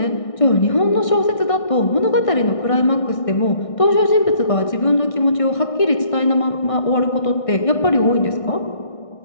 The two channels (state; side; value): late; right; 1.6 ms